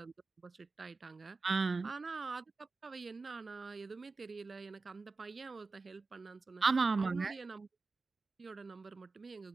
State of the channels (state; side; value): quieter; left; 4.0 dB